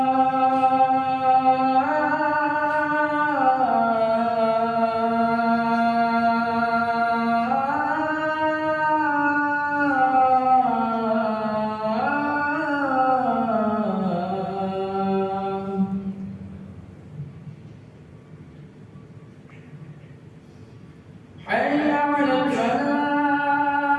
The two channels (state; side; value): identical; both; correlation 1.00